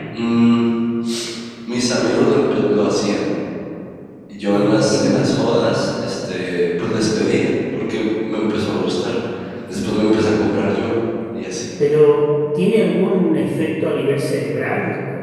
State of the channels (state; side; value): identical; both; correlation 1.00